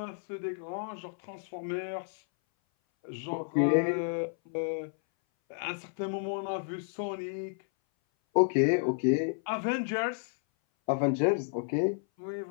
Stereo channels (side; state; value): right; silent; 57 dB below the other